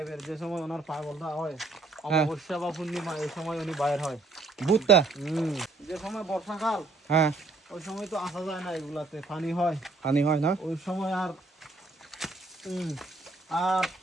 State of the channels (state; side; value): quieter; left; 3.4 dB